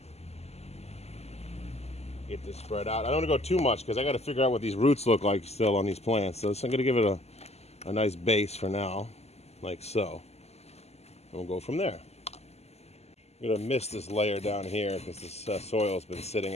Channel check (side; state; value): right; late; 0.30 ms